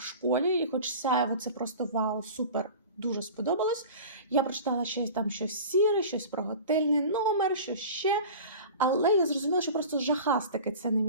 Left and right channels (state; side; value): inverted; both; correlation -0.37